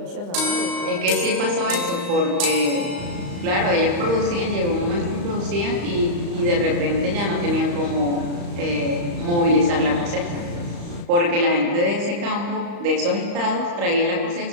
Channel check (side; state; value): left; late; 35 ms